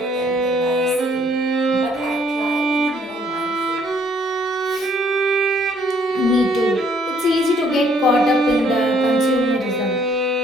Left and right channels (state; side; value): normal; both; correlation 0.64